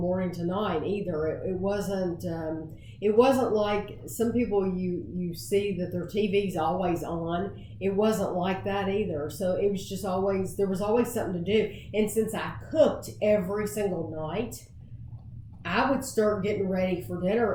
to night either. It wasn't like some people you see that their TV's always on. It wasn't like that either. So it was just there was always something to do. And since I cooked every single night, I would start getting ready for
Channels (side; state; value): both; identical; correlation 1.00